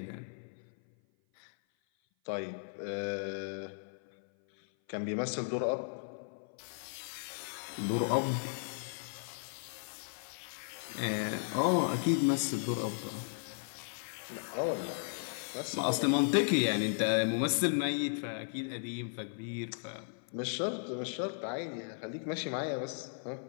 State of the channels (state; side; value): silent; right; 54 dB below the other